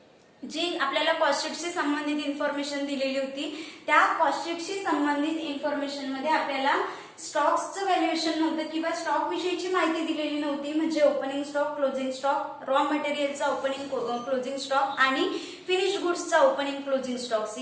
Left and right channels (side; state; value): both; identical; correlation 1.00